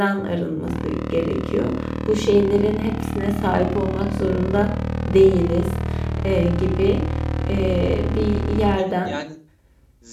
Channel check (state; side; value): identical; both; correlation 1.00